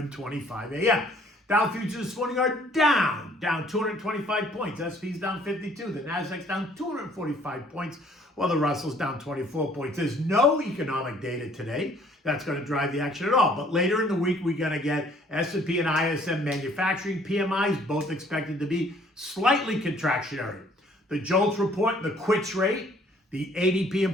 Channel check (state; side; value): normal; both; correlation 0.59